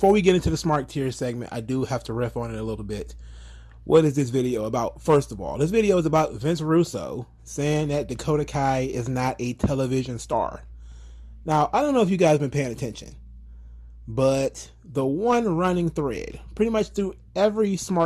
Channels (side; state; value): both; identical; correlation 1.00